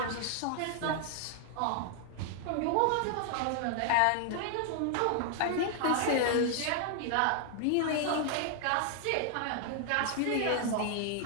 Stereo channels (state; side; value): different; both; correlation 0.00